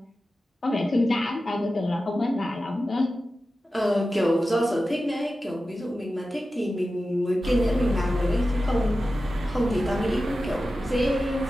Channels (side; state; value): both; normal; correlation 0.93